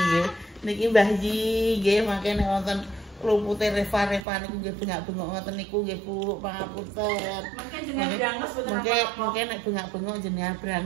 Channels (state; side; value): drops out; left; at 4.2 s